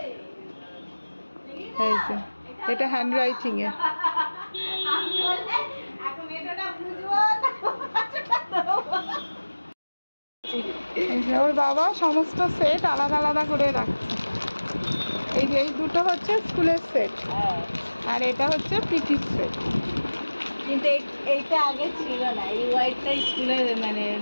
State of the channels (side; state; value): both; inverted; correlation -1.00